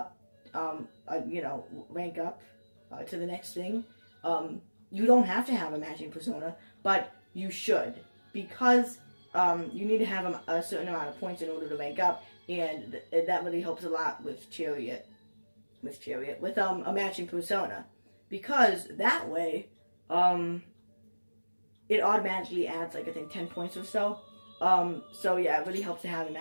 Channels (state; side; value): inverted; both; correlation -1.00